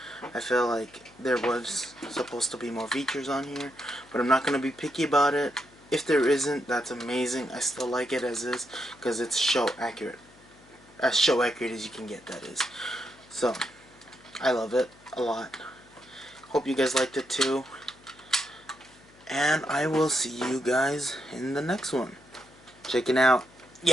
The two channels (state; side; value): noise; left; hum, 26 dB below the sound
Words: I feel like there was supposed to be more features on here, but I'm not going to be picky about it. If there isn't, that's amazing. I still like it as is, because it's show accurate. As show accurate as you can get, that is. So, I love it a lot. Hope you guys liked it too. And I will see you guys in the next one. Checking out.